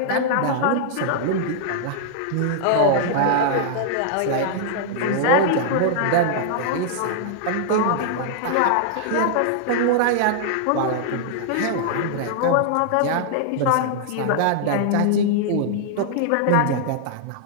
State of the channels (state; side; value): different; both; correlation -0.01